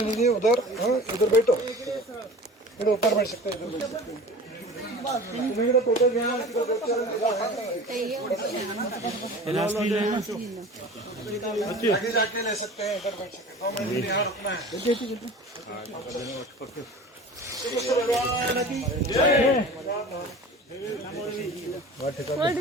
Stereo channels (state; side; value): normal; both; correlation 0.39